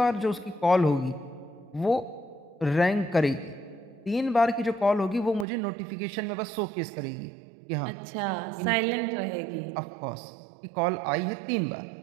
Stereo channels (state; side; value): drops out; left; at 5.5 s